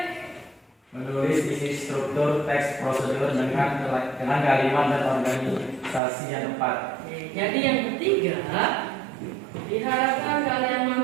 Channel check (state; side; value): drops out; left; at 6.0 s